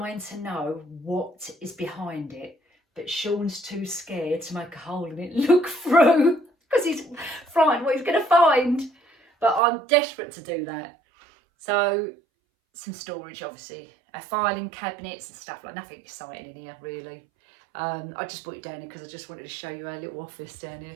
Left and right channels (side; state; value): left; drops out; at 9.6 s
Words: to know what is behind it. But Sean's too scared to make a hole in it, look through, because he's frightened what he's going to find. But I'm desperate to do that. So, some storage, obviously. Filing cabinets and stuff, like nothing exciting in here, really. I just brought it down here because I just wanted to show you our little office down here.